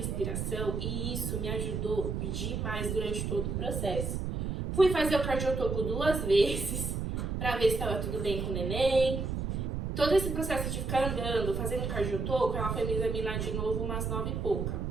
e isso me ajudou demais durante todo o processo. Fui fazer o cardiotoco 2 vezes pra ver se estava tudo bem com o neném. Todo esse processo de ficar andando, fazendo cardiotoco, ela foi me examinar de novo umas 9 e pouca,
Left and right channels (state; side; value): noise; right; rumble, 2 dB below the sound